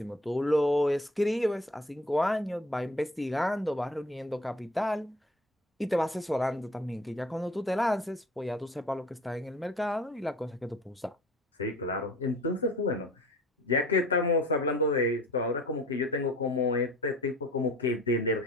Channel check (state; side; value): normal; both; correlation 0.47